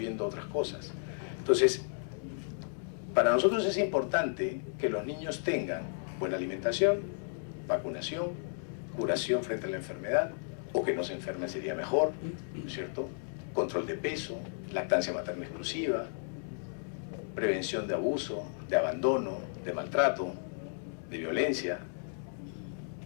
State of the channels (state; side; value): silent; right; digital silence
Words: otras cosas. Entonces, para nosotros es importante que los niños tengan buena alimentación, vacunación, curación frente a la enfermedad, o que no se enfermen sería mejor, ¿cierto? Control de peso, lactancia materna exclusiva, prevención de abuso, de abandono, de maltrato, de violencia,